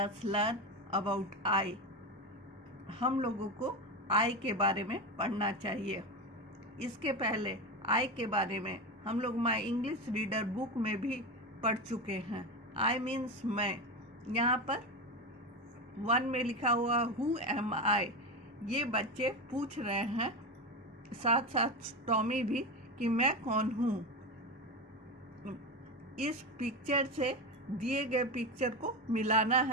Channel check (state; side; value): normal; both; correlation 0.18